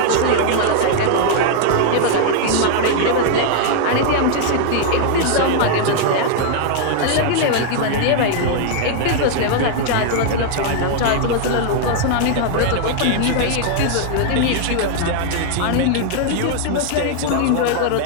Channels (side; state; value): both; different; correlation 0.00